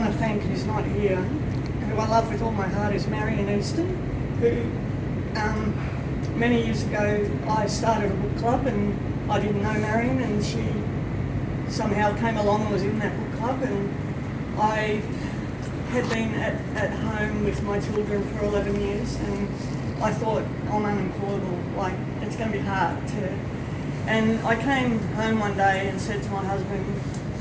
to thank who's not here, who I love with all my heart, is Marion Easton, who many years ago I started a book club, and I didn't know Marion, and she somehow came along and was in that book club, and I had been at home with my children for 11 years, and I thought, I'm unemployable, like it's going to be hard to... And I came home one day and said to my husband,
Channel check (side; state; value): both; identical; correlation 1.00